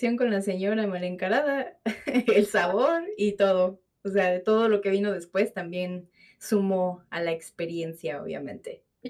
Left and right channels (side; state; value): both; identical; correlation 1.00